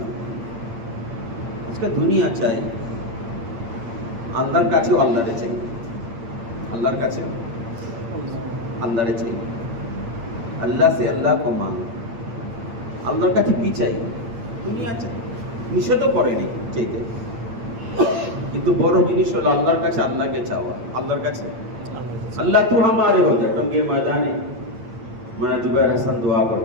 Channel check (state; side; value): late; left; 8.6 ms